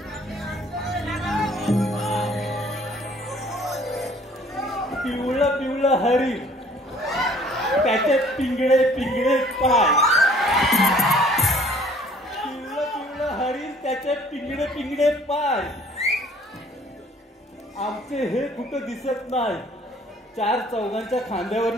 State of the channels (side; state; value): both; normal; correlation 0.55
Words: पिवळं पिवळं हरी त्याचे पिंगळे पिंगळे पाय पिवळं पिवळं हरी त्याचे पिंगळे पिंगळे पाय आमचे हे कुठं दिसत नाही 4 चौघांच्या